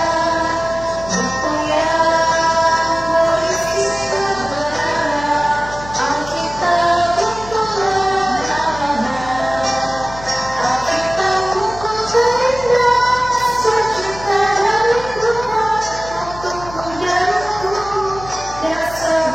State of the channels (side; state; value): left; noise; hum, 15 dB below the sound